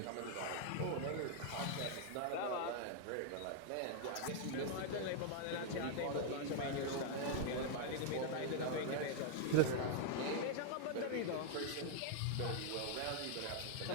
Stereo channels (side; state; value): both; different; correlation 0.00